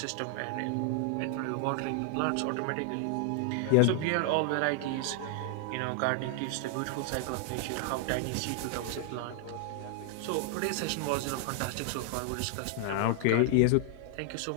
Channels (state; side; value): different; both; correlation 0.00